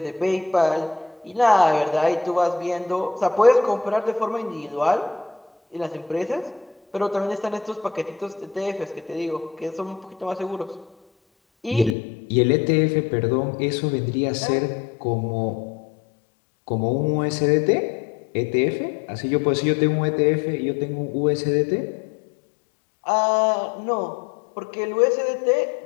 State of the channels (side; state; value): right; drops out; at 12.0 s